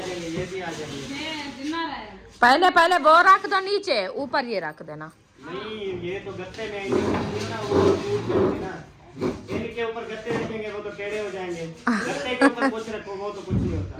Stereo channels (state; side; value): identical; both; correlation 1.00